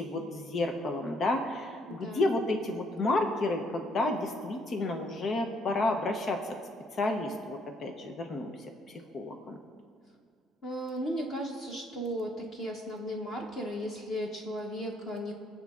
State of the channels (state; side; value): normal; both; correlation 0.69